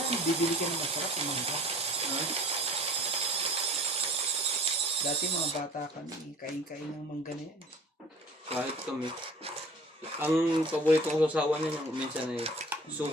bibili ka ng masarap yung mangga. Dati mga bata kami, kain-kain ng mangga na yan. Kahit kami. Ang paborito kong sasawa niya yung minsan ay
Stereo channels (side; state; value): both; normal; correlation 0.48